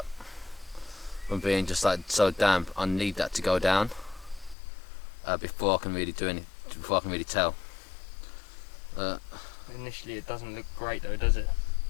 from being just like so damp. I need that to go down before I can really do anything. Before I can really tell. Initially, it doesn't look great though, does it?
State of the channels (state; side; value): drops out; right; at 4.5 s